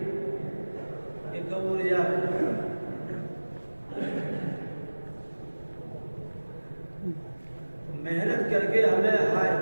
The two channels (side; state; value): both; inverted; correlation -1.00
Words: कि कब उड़ जाए। तो मेहनत करके हमें हाय